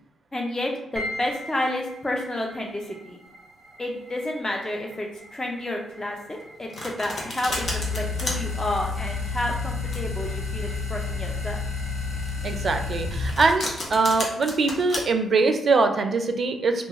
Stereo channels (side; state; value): both; normal; correlation 0.76